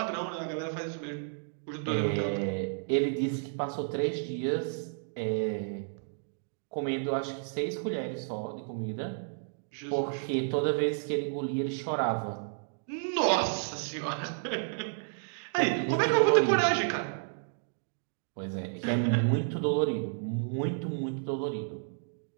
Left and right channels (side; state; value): left; silent; digital silence